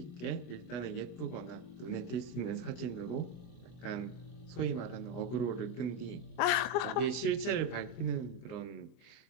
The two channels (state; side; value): late; right; 25 ms